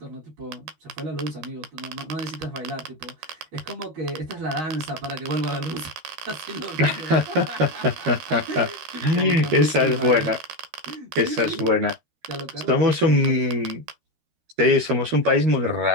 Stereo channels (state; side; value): late; left; 13 ms